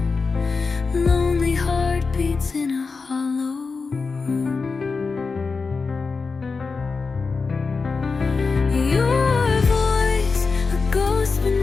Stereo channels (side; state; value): right; quieter; 4.5 dB